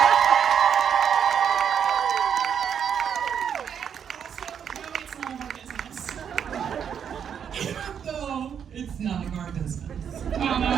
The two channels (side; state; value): left; quieter; 8.0 dB